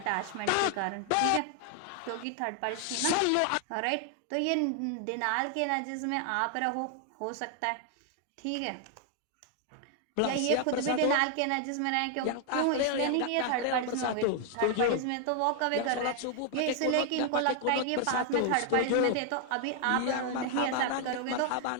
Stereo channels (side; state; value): both; different; correlation 0.00